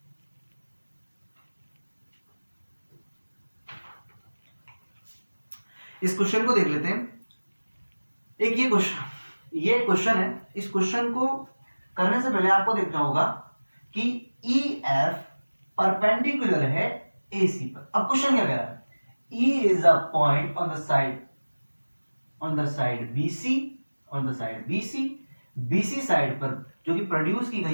इस क्वेश्चन को देख लेते हैं। एक ये क्वेश्चन है। इस क्वेश्चन को करने से पहले आपको देखना होगा कि EF परपेंडिकुलर है AC पर। अब क्वेश्चन क्या कह रहा है? E is a point on the side BC side पर जो कि प्रोड्यूस की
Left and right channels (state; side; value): inverted; both; correlation -1.00